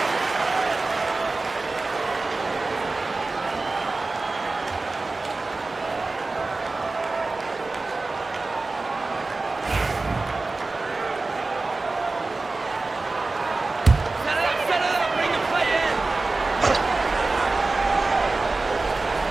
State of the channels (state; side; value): quieter; left; 3.5 dB